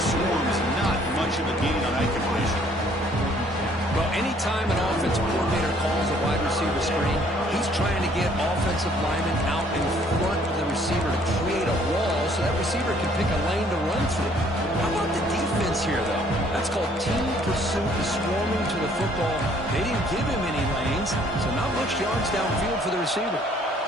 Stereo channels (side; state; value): both; normal; correlation 0.61